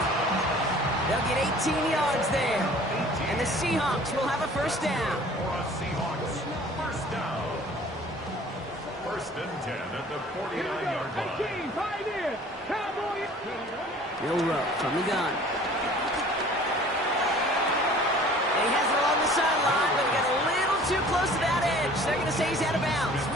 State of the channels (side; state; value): both; normal; correlation 0.49